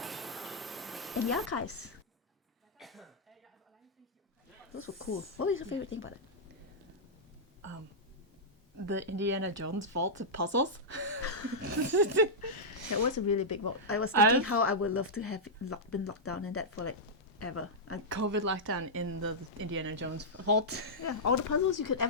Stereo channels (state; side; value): normal; both; correlation -0.10